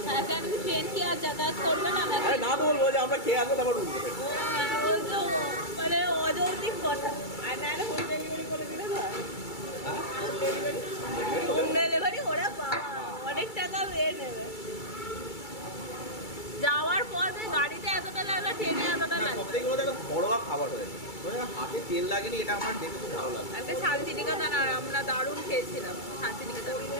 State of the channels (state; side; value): late; right; 2.3 ms